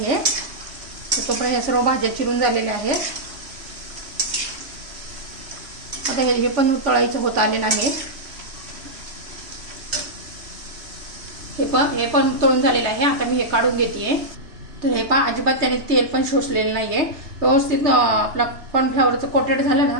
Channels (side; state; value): left; late; 3.2 ms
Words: आहे। तोपर्यंत हे सर्व भाज्या चिरून झालेल्या आहेत। आता हे पण तळायचं होत आलेलं आहे। हे पण तळून झालेलं आहे। आता मी हे काढून घेतेय। तर हे पहा, अजिबात त्याने तेल पण शोषलेलं नाहीये। व्यवस्थित आपला कॉर्नफ्लॉवरचं कोटेड झालं ना